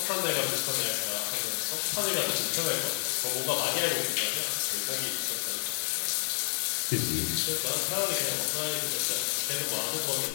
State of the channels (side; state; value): right; silent; digital silence